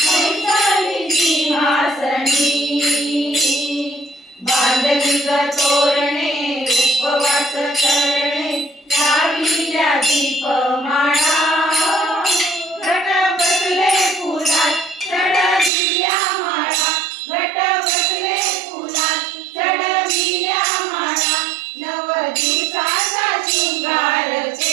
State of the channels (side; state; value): left; drops out; at 15.7 s